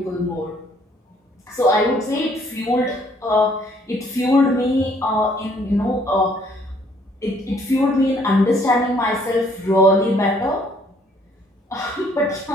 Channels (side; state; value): both; normal; correlation 0.63